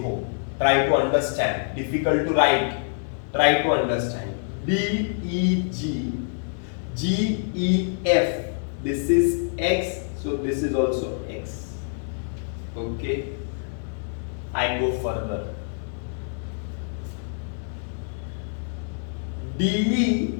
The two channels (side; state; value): right; silent; 58 dB below the other